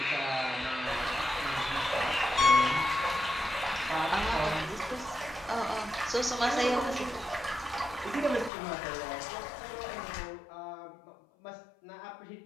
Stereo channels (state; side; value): drops out; right; at 8.5 s